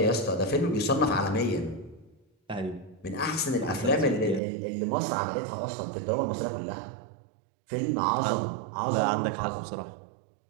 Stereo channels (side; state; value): left; drops out; at 4.4 s